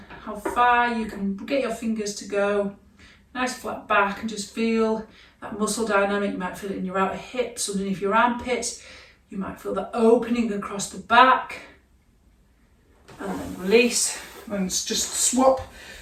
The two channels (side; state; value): both; identical; correlation 1.00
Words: how far you can get your fingers to go. Nice flat back, and just feel that muscle dynamic. You might feel it in your outer hips, underneath your armpits. You might feel that opening across the back. And then release, and just swap